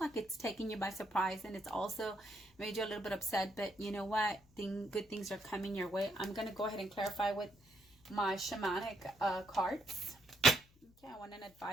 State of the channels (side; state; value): left; noise; hum, 29 dB below the sound